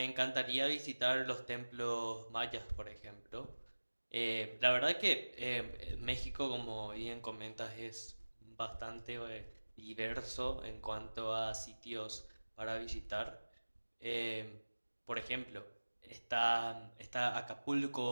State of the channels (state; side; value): inverted; both; correlation -1.00